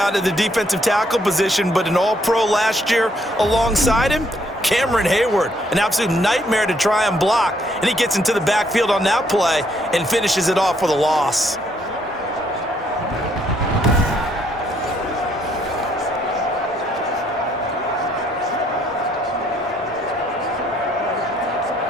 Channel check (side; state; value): both; normal; correlation 0.69